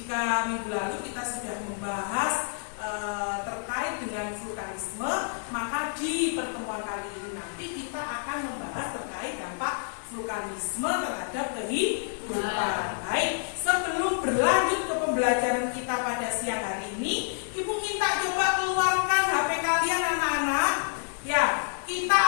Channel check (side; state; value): right; silent; digital silence